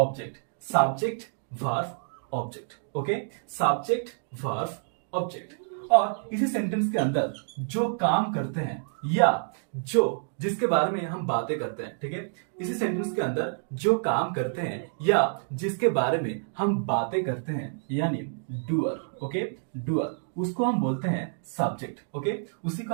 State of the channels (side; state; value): left; silent; digital silence